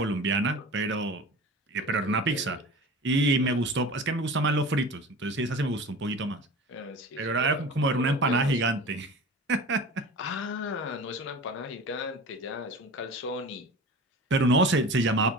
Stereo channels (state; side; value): normal; both; correlation 0.36